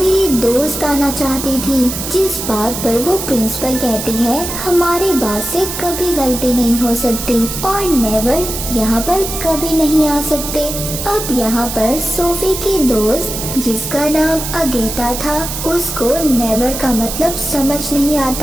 दोस्त आना चाहती थी। जिस बात पर वो प्रिंसिपल कहती है, हमारे बाद से कभी गलती नहीं हो सकती और नेवर यहाँ पर कभी नहीं आ सकते। अब यहाँ पर सोफी की दोस्त जिसका नाम अगेता था, उसको नेवर का मतलब समझ नहीं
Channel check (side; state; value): right; noise; hiss, 6 dB below the sound